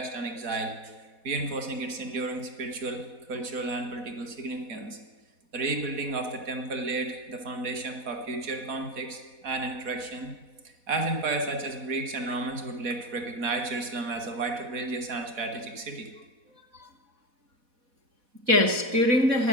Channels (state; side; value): late; left; 4.1 ms